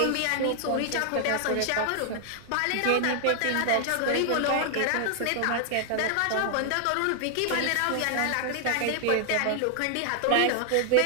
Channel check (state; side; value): different; both; correlation 0.00